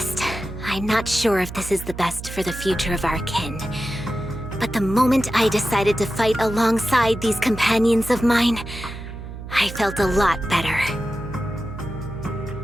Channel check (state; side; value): noise; right; hum, 10 dB below the sound